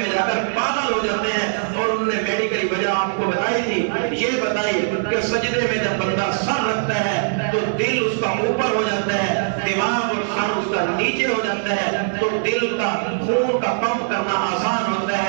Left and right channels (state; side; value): silent; left; digital silence